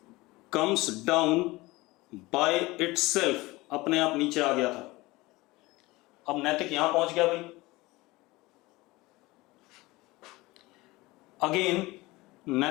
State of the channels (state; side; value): quieter; right; 20.8 dB